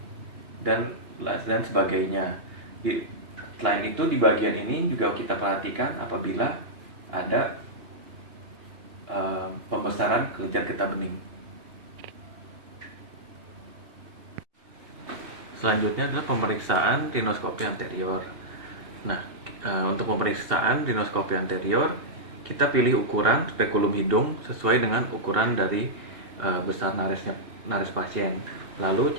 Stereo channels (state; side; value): late; left; 2.8 ms